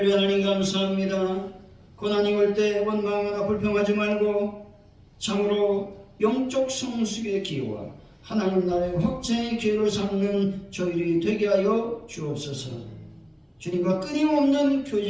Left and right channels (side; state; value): both; identical; correlation 1.00